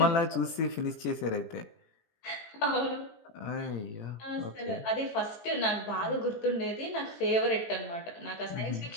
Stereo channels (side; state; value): right; late; 18 ms